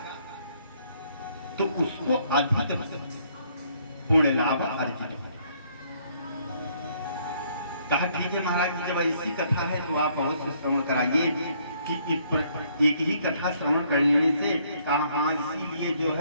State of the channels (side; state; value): both; inverted; correlation -0.66